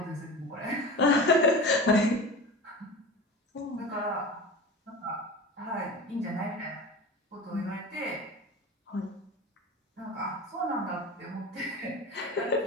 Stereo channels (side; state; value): both; normal; correlation 0.31